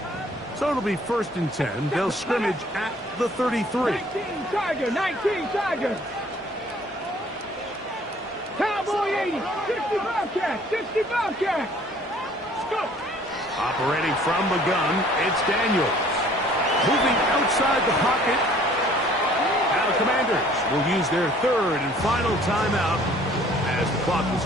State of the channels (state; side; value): normal; both; correlation 0.56